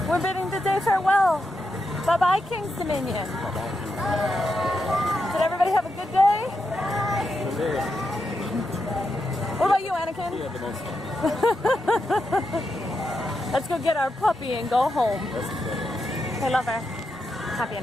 We're bidding the day farewell. Bye-bye, King's Dominion. Did everybody have a good day? What about you, Anakin? You had the most fun. Let's go get our puppy and go home. That's the Hey, lover. Happy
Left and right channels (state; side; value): normal; both; correlation 0.85